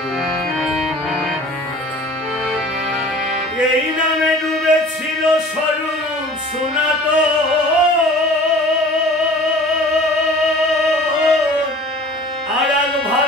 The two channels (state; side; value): normal; both; correlation 0.45